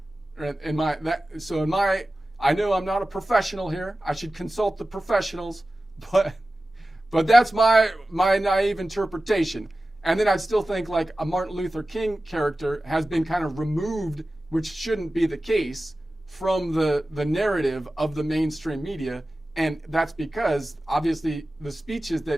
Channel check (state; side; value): normal; both; correlation 0.95